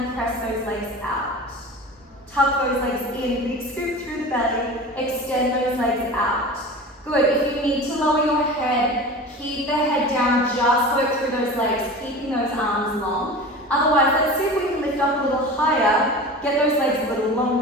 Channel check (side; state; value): both; normal; correlation 0.34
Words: press those legs out? Tuck those legs in, big scoop through the belly, extend those legs out. Good, if you need to lower your head, keep the head down, just work through those legs, keeping those arms long. Otherwise, let's see if we can lift up a little higher, get those legs a little